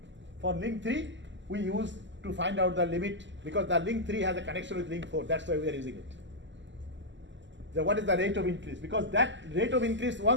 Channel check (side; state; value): left; late; 0.54 ms